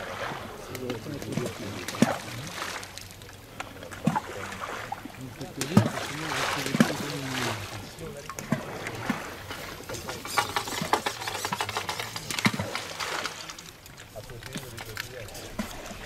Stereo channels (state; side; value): identical; both; correlation 1.00